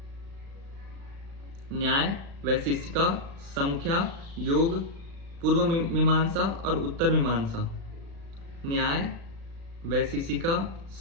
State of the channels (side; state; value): left; late; 36 ms